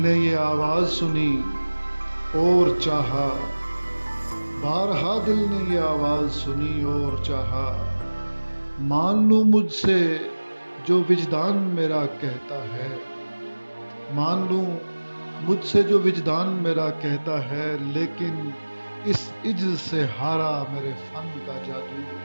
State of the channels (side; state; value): both; inverted; correlation -1.00